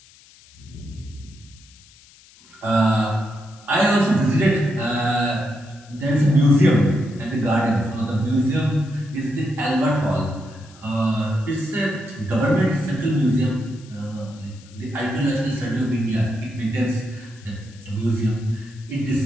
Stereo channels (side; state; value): left; noise; hiss, 25 dB below the sound